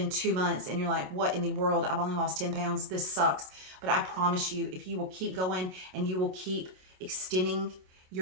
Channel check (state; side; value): late; left; 27 ms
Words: 2 months and you're like, what in the world? I've only lost 10 pounds. This sucks. But I promise you, if you will keep going and you will keep extending